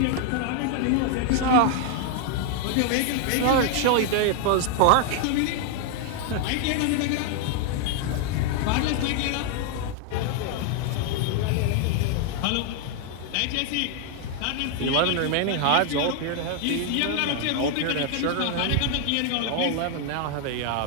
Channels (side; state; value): both; different; correlation 0.00